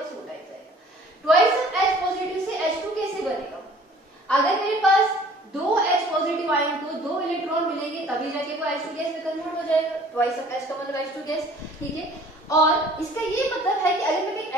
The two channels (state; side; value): normal; both; correlation 0.52